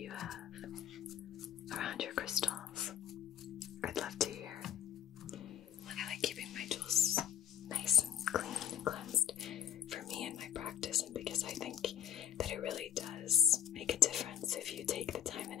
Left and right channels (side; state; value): right; quieter; 10.1 dB